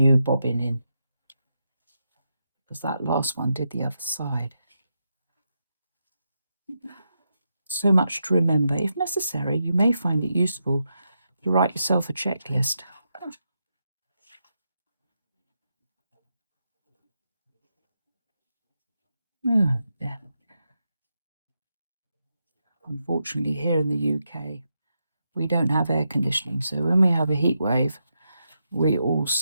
bobbin in, because that last one did the other side. So much to remember. If necessary, you may find it useful to write yourself a checklist. Oh, yeah. Unfortunately, here in the UK, we don't have air conditioning, so when we have a heat wave, we all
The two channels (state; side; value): inverted; both; correlation -0.84